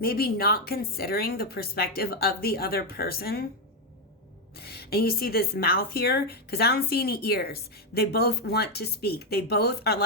not considering the perspective of the other person. And you see this mouth here, because I don't see any ears. They both want to speak. They both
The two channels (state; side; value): normal; both; correlation 0.04